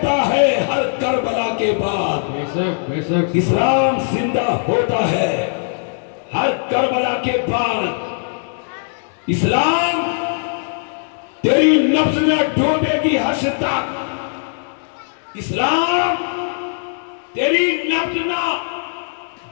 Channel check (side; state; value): right; silent; digital silence